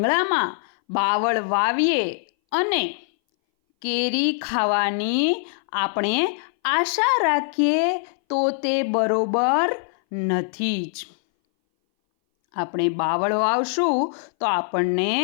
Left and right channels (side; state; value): right; silent; 60 dB below the other